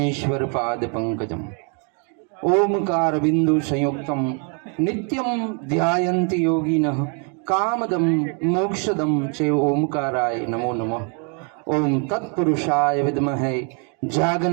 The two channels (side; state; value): left; quieter; 38.5 dB